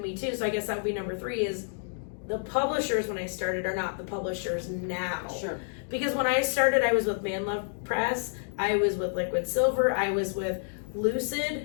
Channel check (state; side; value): silent; right; digital silence